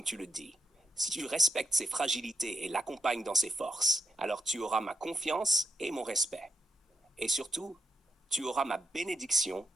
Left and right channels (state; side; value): normal; both; correlation 0.83